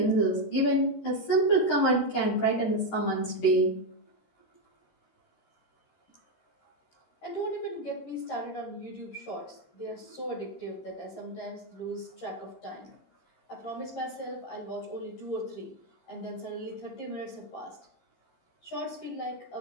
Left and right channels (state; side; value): late; right; 12 ms